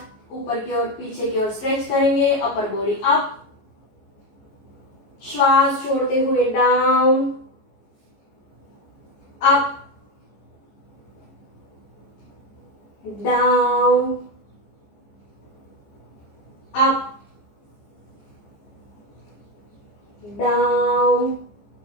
ऊपर की ओर पीछे की ओर स्ट्रेच करेंगे। Upper body up. श्वास छोड़ते हुए down, up, down, up, down,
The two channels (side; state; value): right; late; 14 ms